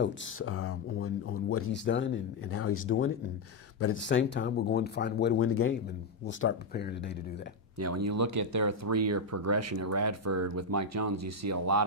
on what he's done and how he's doing it. But at the same time, we're going to find a way to win the game, and we'll start preparing today to do that. Yeah, when you look at their 3-year progression at Radford with Mike Jones, you see a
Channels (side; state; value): right; quieter; 3.2 dB